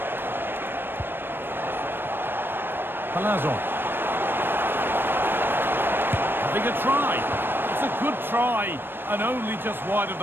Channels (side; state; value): left; late; 0.098 ms